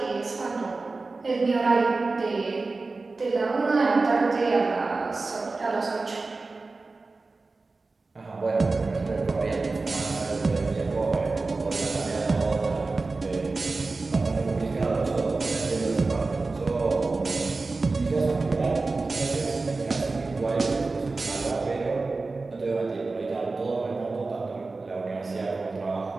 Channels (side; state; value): left; quieter; 3.7 dB